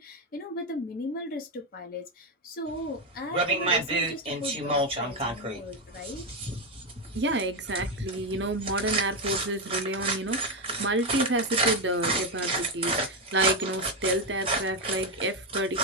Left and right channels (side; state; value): both; normal; correlation 0.08